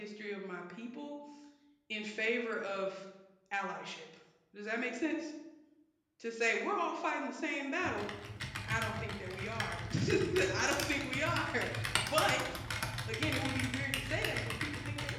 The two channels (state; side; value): identical; both; correlation 1.00